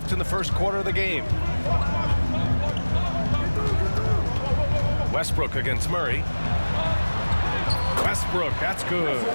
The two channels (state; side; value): inverted; both; correlation -1.00